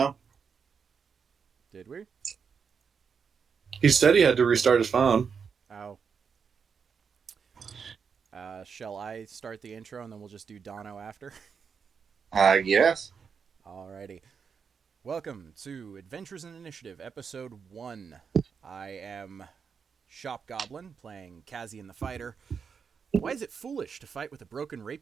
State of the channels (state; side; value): quieter; left; 6.2 dB